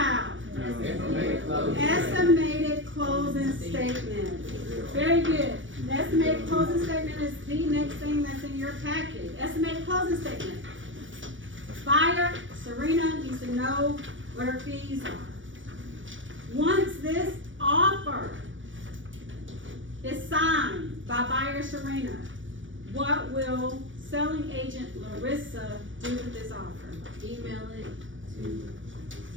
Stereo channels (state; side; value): late; left; 0.56 ms